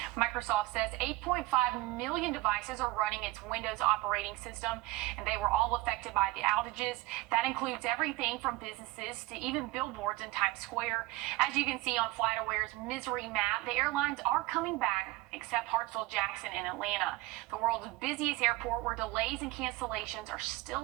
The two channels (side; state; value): left; quieter; 19.1 dB